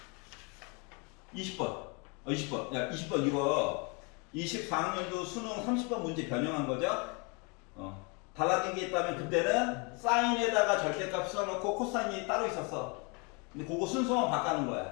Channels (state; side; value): quieter; right; 32.1 dB